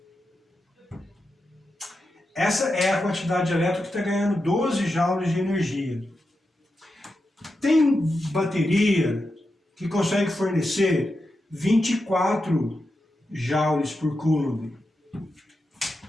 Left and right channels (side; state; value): both; normal; correlation 0.88